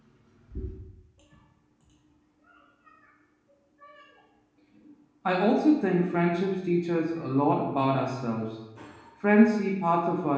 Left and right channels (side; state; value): both; identical; correlation 1.00